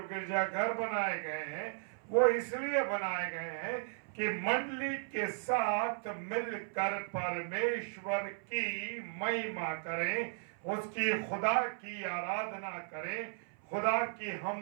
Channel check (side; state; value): left; silent; 54 dB below the other